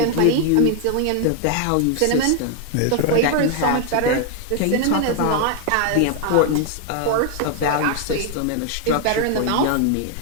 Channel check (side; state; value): both; different; correlation 0.00